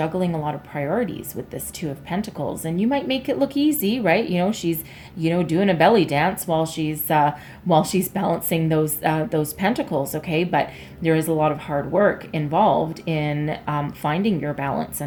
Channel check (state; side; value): identical; both; correlation 1.00